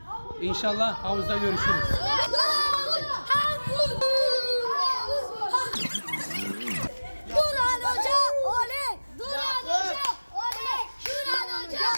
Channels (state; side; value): inverted; both; correlation -1.00